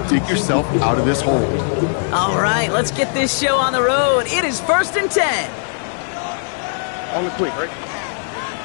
dig yourself out of this hole. All right, let's get this show on the road. It is 1st and 10. On the quick, right?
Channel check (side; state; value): right; silent; 61 dB below the other